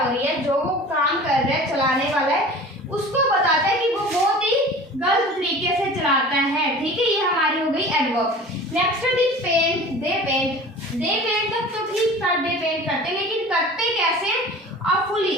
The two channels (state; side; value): normal; both; correlation 0.40